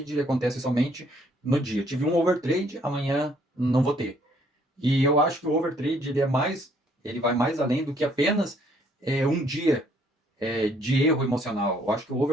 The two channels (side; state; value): both; normal; correlation 0.65